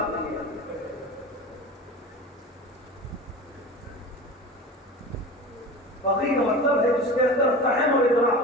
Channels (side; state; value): both; normal; correlation 0.33